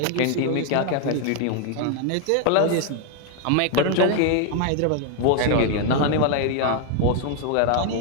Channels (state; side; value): different; both; correlation 0.01